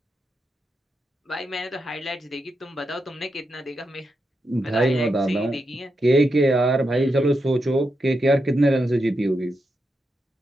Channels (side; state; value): both; normal; correlation 0.85